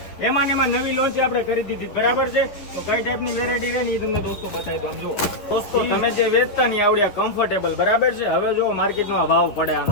એમાં નવી લોન્ચ આપણે કરી દીધી બરાબર છે. તો કઈ ટાઈપની વેરાયટી રહે ને એ તમને દોસ્તો બતાવી દો. જુઓ દોસ્તો તમે જે વેચતા નહીં આવડ્યા કમ્ફર્ટેબલ બરાબર છે. હવે જો માર્કેટમાં ભાવ પડે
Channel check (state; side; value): late; right; 9.7 ms